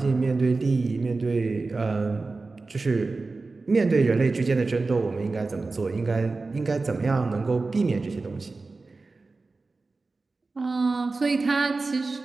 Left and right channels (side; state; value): left; quieter; 3.7 dB